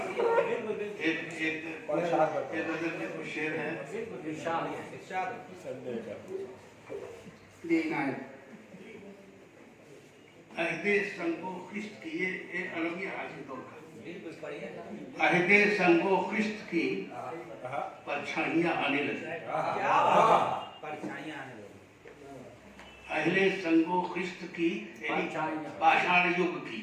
एक नजर में कुछ शेर है। अहदे संगो खिस्त की, ये एक अलग ही हाजिर दौर का। अहदे संगो खिस्त की परछाइयां आने लगी। अहले संगो खिस्त की पाषाण युग की,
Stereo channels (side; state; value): both; identical; correlation 1.00